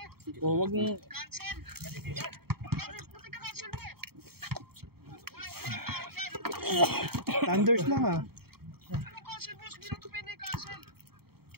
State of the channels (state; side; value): late; left; 0.95 ms